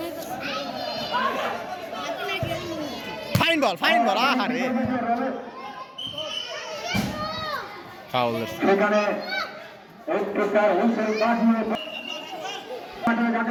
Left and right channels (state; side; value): identical; both; correlation 1.00